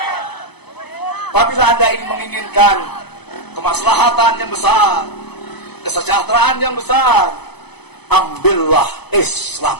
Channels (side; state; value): right; late; 0.98 ms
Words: Apabila Anda ingin menginginkan kemaslahatan yang besar, kesejahteraan yang besar, ambillah Islam,